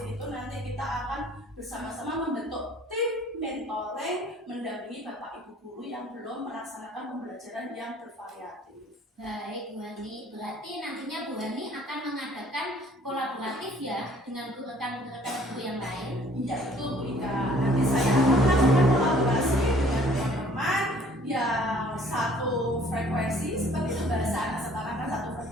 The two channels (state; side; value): normal; both; correlation 0.56